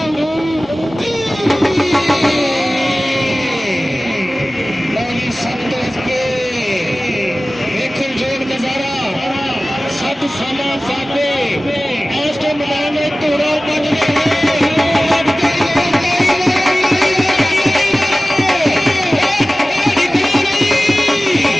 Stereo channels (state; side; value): normal; both; correlation 0.97